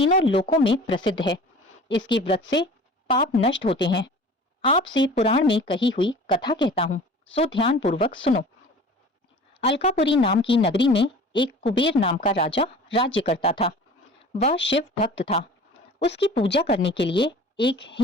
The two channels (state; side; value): normal; both; correlation 0.43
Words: लोकों में प्रसिद्ध है। इसके व्रत से पाप नष्ट होते हैं। आपसे पुराण में कही हुई कथा कहता हूँ, सो ध्यान पूर्वक सुनो। अलकापुरी नाम की नगरी में एक कुबेर नाम का राजा राज्य करता था। वह शिव भक्त था। उसकी पूजा करने के लिए एक